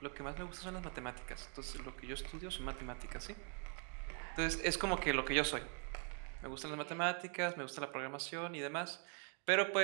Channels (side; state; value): left; quieter; 38.9 dB